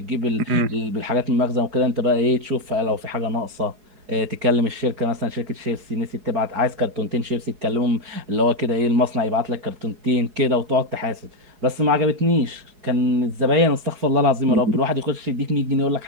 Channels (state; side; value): late; left; 4.7 ms